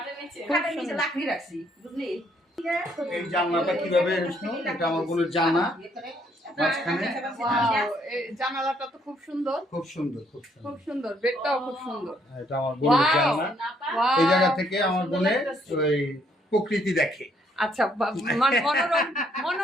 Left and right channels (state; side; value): normal; both; correlation 0.69